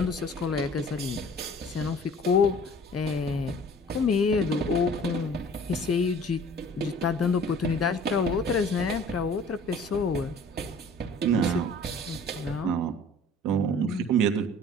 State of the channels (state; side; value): normal; both; correlation 0.49